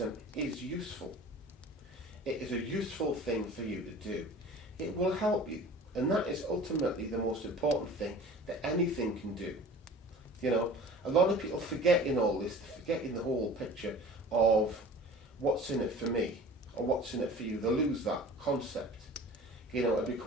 is useful. It is a useful thing for you to do. It will help you. And that is ultimately the most important thing that anything can do. A lot of people forget in all this, they forget in the whole picture of what's in it for me or what's in it for you. They lose that concept. It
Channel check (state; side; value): normal; both; correlation 0.43